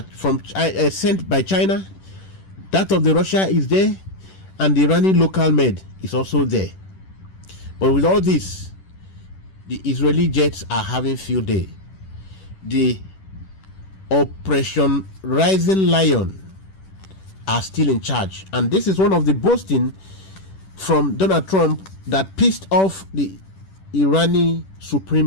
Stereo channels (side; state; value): right; late; 10 ms